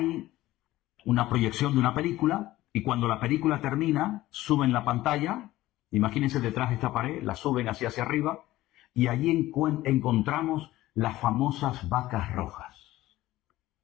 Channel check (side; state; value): right; quieter; 16.3 dB